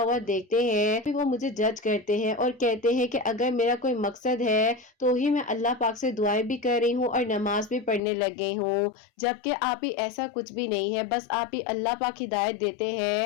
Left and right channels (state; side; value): drops out; right; at 8.0 s